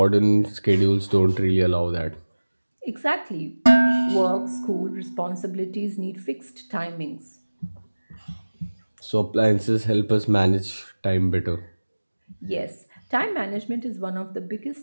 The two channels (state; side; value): inverted; both; correlation -1.00